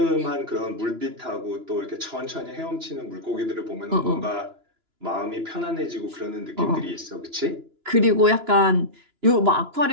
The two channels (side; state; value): left; late; 2.9 ms